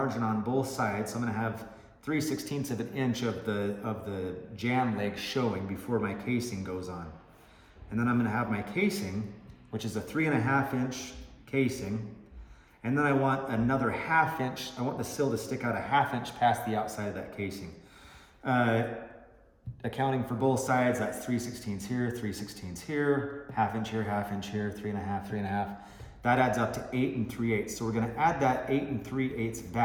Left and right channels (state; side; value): identical; both; correlation 1.00